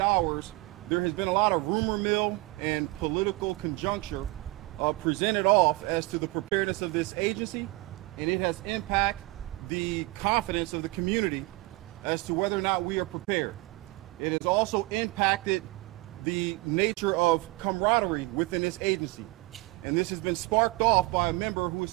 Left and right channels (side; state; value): left; quieter; 22.3 dB